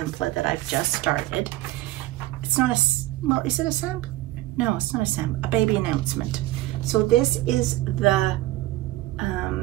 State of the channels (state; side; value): quieter; left; 16.8 dB